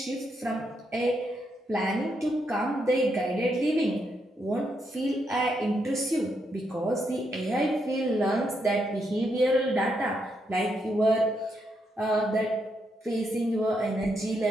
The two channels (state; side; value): normal; both; correlation 0.79